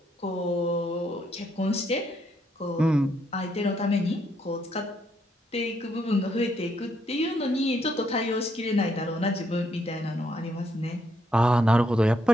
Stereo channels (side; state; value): both; normal; correlation 0.74